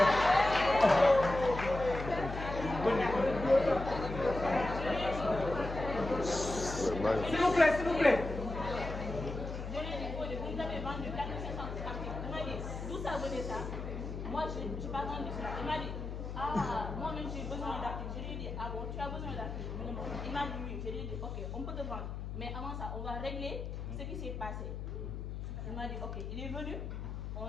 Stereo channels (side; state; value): left; noise; hum, 6 dB below the sound